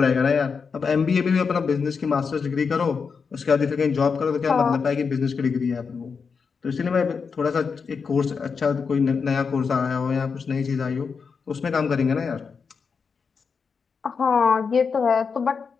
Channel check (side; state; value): right; quieter; 5.5 dB